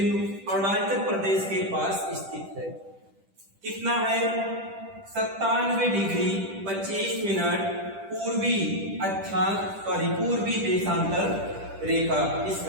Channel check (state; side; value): late; left; 10 ms